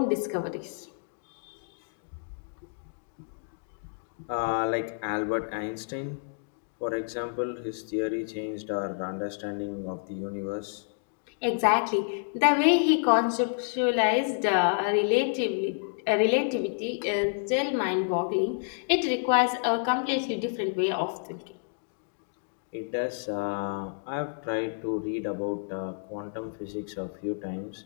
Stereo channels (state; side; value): silent; right; digital silence